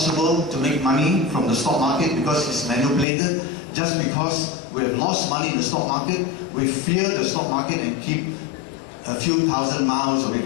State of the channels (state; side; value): drops out; right; at 3.1 s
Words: to make money from the stock market because it's manipulated. Just because we have lost money in the stock market, we fear the stock market and keep a few thousand miles away